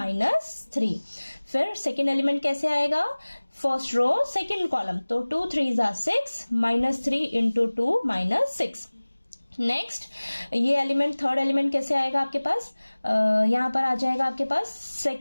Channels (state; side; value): inverted; both; correlation -1.00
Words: फिर सेकेंड एलिमेंट कैसे आएगा, फर्स्ट रो सेकेंड कॉलम, तो 2 3 6 -3 इंटू 2 -6। नेक्स्ट ये एलिमेंट थर्ड एलिमेंट कैसे आएगा आपके पास, यहाँ पर आ जाएगा आपके पास